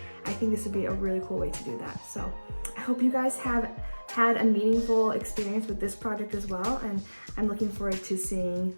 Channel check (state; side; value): inverted; both; correlation -1.00